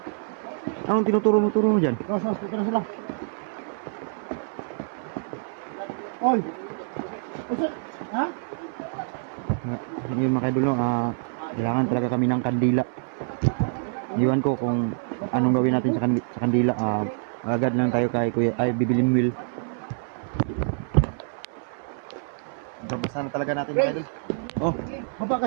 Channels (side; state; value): left; silent; 58 dB below the other